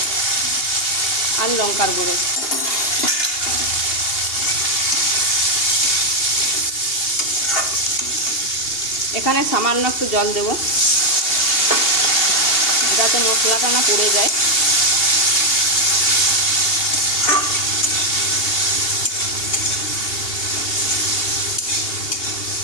আর লঙ্কার গুঁড়ো। এখানে সামান্য একটু জল দেব যাতে মশলাটা না পুড়ে যায়।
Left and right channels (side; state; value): right; late; 2.8 ms